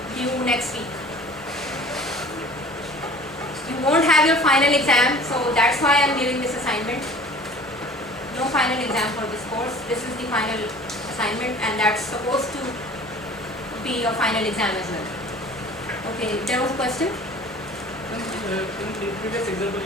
Due next week. You won't have your final exam, so that's why I'm giving this assignment. No final exam for this course. This is the final assignment, and that's supposed to be your final exam as well. Okay, there was a question? In the previous example,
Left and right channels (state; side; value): normal; both; correlation 0.46